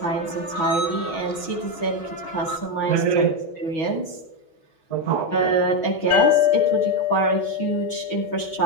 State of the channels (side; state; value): right; late; 6.2 ms